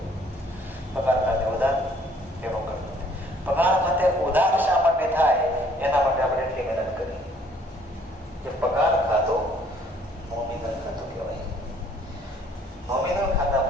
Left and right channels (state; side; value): normal; both; correlation 0.60